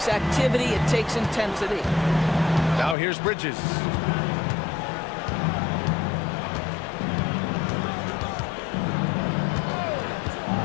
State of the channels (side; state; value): right; drops out; at 3.0 s